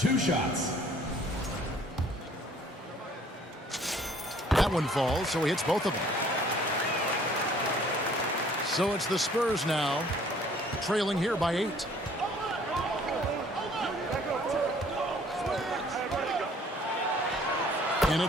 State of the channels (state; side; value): normal; both; correlation 0.57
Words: shots. That one falls, so he hits both of them. So it's the Spurs now, trailing here by 8. And